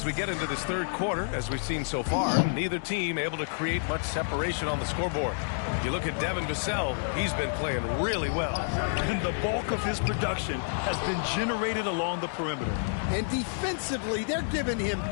we get into this third quarter, as we've seen so far, neither team able to create much separation on the scoreboard. You look at Devin Vassell, he's been playing really well. And the bulk of his production has been generated along the perimeter. And defensively, they're giving him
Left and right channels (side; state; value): right; silent; digital silence